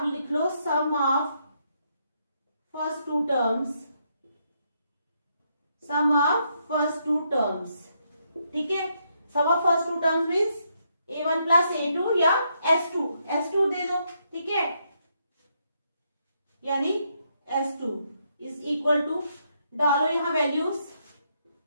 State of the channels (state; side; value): inverted; both; correlation -0.77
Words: लिख लो sum of first two terms, sum of first two terms, ठीक है। Sum of first two terms means a1 plus a2 या S2 दे दो, ठीक है। यानी S2 इज इक्वल टू, डालो यहां वैल्यूज,